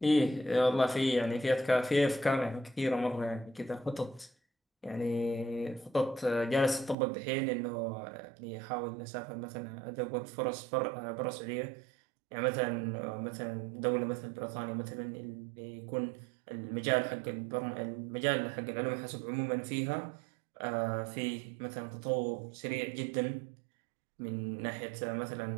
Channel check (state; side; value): drops out; left; at 7.0 s